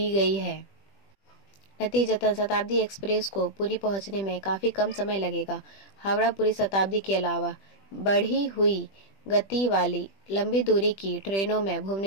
गई है। नतीजतन शताब्दी एक्सप्रेस को पुरी पहुंचने में काफी कम समय लगेगा। हावड़ा पूरी शताब्दी के अलावा बढ़ी हुई गति वाली लंबी दूरी की ट्रेनों में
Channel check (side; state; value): right; late; 20 ms